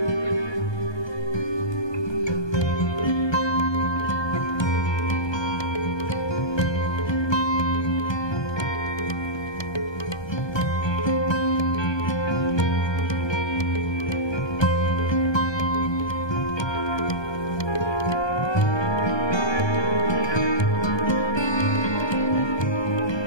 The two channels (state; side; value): late; right; 1.2 ms